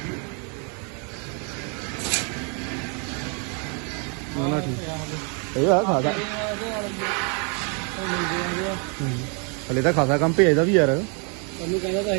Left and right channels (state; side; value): quieter; left; 36.8 dB